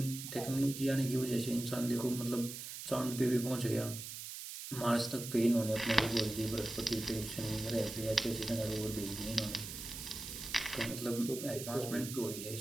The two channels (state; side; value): noise; right; hiss, 8 dB below the sound